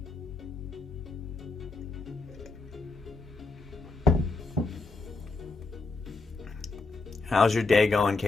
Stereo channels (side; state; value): right; quieter; 3.7 dB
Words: How's your day going,